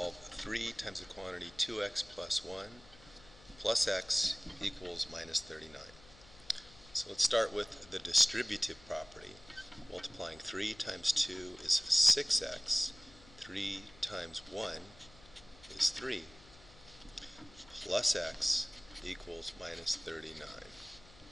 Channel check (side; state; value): left; noise; hum, 23 dB below the sound